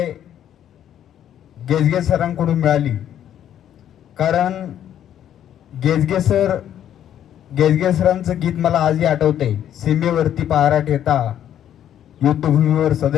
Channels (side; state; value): right; quieter; 10.5 dB